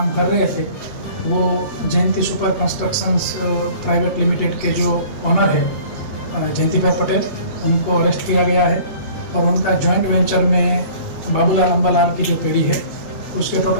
कर रहे थे वो जयंती सुपर कंस्ट्रक्शंस प्राइवेट लिमिटेड के जो ऑनर है जयंती भाई पटेल, उनको अरेस्ट किया गया है। और उनका जॉइंट वेंचर में बाबूलाल अंबालाल की जो पीढ़ी है उसके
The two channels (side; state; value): right; late; 8.5 ms